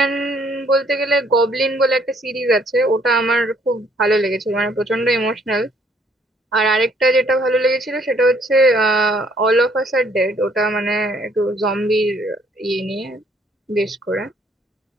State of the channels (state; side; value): normal; both; correlation 0.65